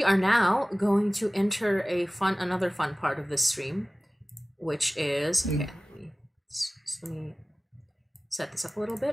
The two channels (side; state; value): both; normal; correlation 0.98